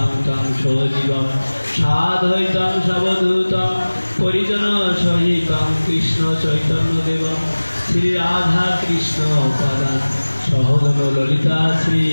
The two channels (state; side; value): inverted; both; correlation -1.00